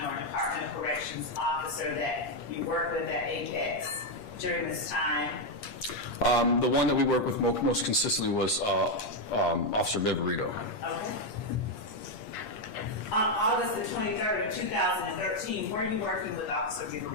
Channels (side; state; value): right; late; 8.6 ms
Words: or Department of Corrections officer that you worked with at Apex during this time? The one that we worked with most consistently was Officer Viverito. Okay. On August the 23rd of 2013, were you working with Officer